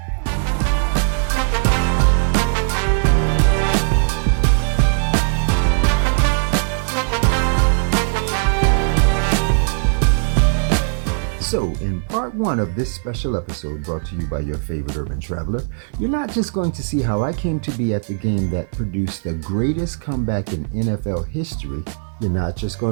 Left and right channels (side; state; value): left; silent; 58 dB below the other